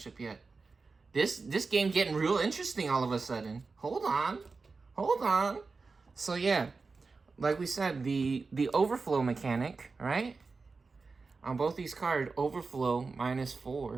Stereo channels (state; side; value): quieter; left; 4.3 dB